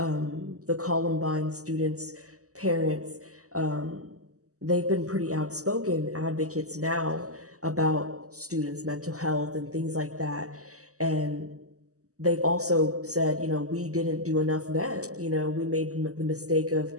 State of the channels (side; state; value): left; late; 0.66 ms